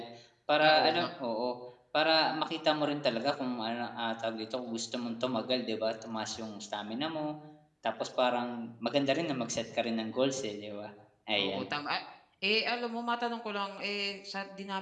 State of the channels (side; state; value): both; identical; correlation 1.00